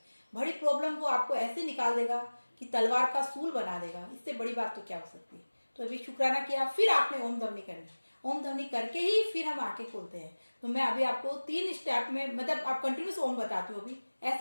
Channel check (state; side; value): inverted; both; correlation -1.00